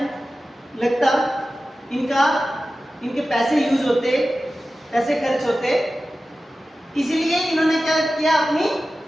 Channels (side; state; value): both; normal; correlation 0.94